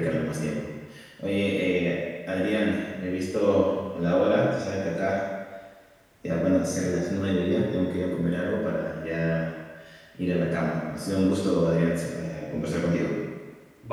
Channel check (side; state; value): both; identical; correlation 1.00